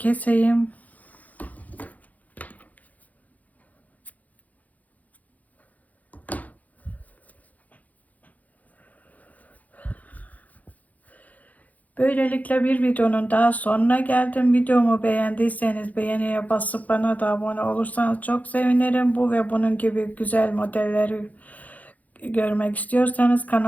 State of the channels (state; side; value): late; right; 0.077 ms